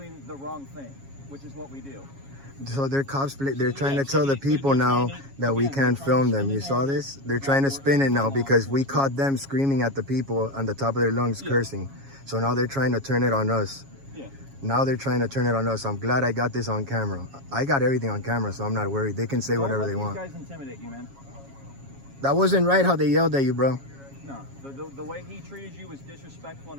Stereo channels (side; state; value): left; late; 7.3 ms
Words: the wrong thing, which is what we do. So they're they're trying to tell the people now that we can't film them. You saw this? They're trying to spin it now because we caught them screaming at the people on the top of their lungs, cursing. So now they're trying to turn it on us. Yeah. Now they're trying to turn it on us. I'm glad I got this on camera. I got everything on camera, so I'm not worried. They can say whatever they want. Don't let these guys intimidate you, man. That wasn't right how they yelled at you, bro. No, the way he treated you was disrespectful